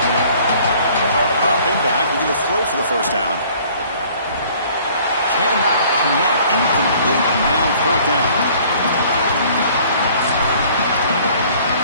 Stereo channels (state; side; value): inverted; both; correlation -0.55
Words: Dropping back, we're going to throw for the first down. Cannot connect, incomplete, and now fourth down.